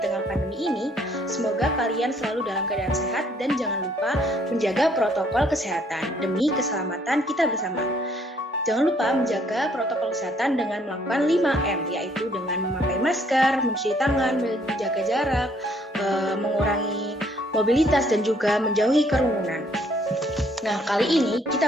tengah pandemi ini, semoga kalian selalu dalam keadaan sehat dan jangan lupa menjaga protokol kesehatan demi keselamatan kita bersama. Jangan lupa menjaga protokol kesehatan dengan melakukan 5M, yaitu dengan memakai masker, mencuci tangan, menjaga jarak, mengurangi mobilitas, dan juga menjauhi kerumunan. Nah, kali ini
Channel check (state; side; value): normal; both; correlation 0.65